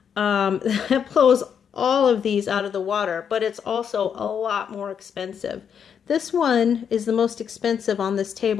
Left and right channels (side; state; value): right; quieter; 7.6 dB